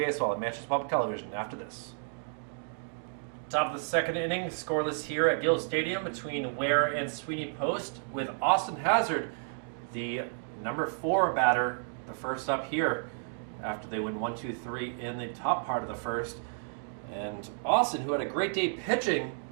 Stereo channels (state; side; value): silent; left; digital silence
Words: at Manchester Public Television after this. Top of the 2nd inning, scoreless here at Gill Stadium between Weare and Sweeney Post, with Austin Hazard, the number 4 batter, the first up here after they win 1-2-3 in the top part of the first. And Austin, who had a great day pitching,